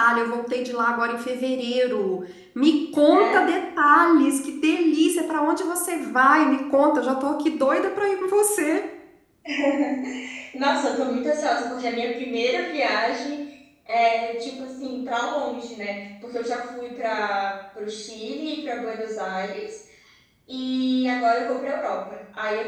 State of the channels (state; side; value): identical; both; correlation 1.00